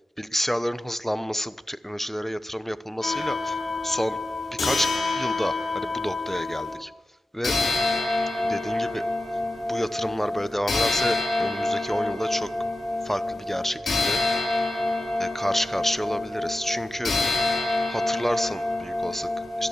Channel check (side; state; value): both; normal; correlation 0.94